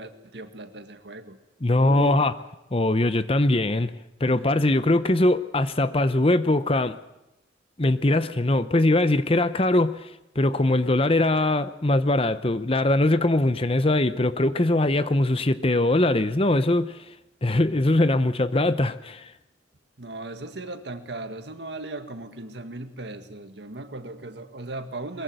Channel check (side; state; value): both; normal; correlation 0.68